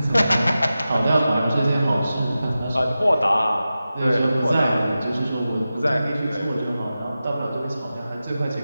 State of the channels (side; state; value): both; inverted; correlation -0.93